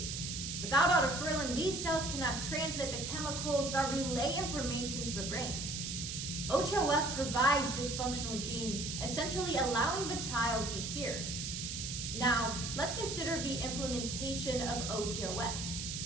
without autofurlin, these cells cannot transmit the chemicals that relay information to the brain. OTOF provides this functional gene, essentially allowing the child to hear. Now, let's consider the implementation of OTOF.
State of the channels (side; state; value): right; noise; hiss, 4 dB below the sound